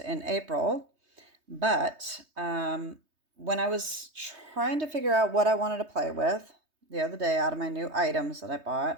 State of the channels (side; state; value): left; late; 3.2 ms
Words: in April, but when I was trying to figure out what I wanted to play with the other day out of my new items that I